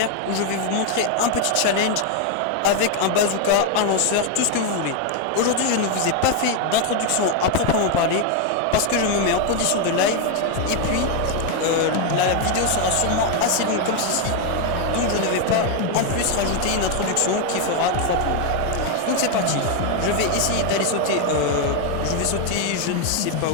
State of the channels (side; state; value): both; different; correlation 0.01